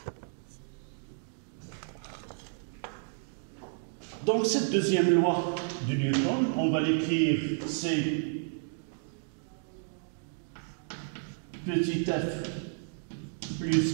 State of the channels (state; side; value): silent; left; digital silence